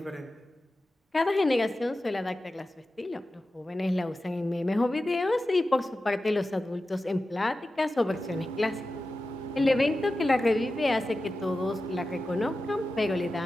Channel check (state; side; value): normal; both; correlation 0.93